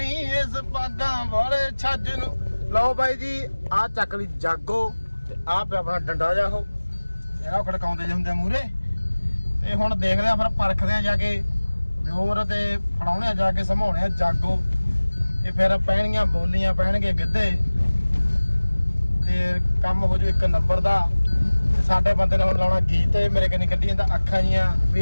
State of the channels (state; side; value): inverted; both; correlation -1.00